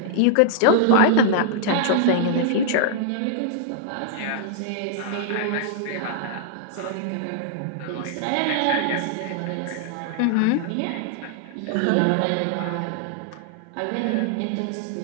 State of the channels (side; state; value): both; different; correlation -0.01